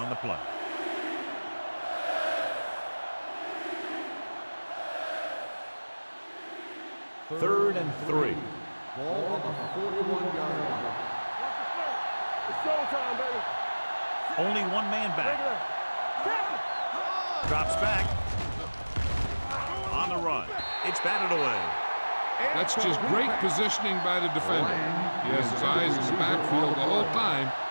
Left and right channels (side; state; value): both; inverted; correlation -1.00